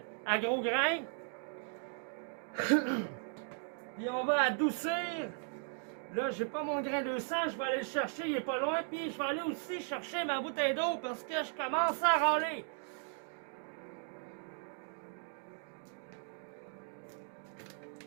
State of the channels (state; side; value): silent; left; 53 dB below the other